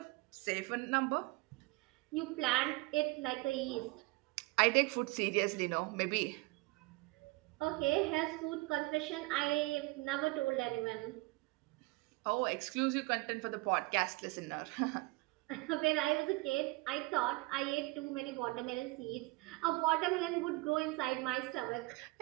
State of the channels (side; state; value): left; quieter; 23.4 dB